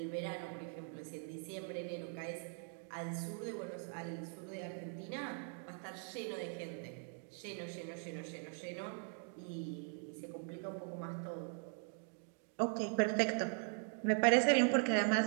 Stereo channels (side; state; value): left; silent; 50 dB below the other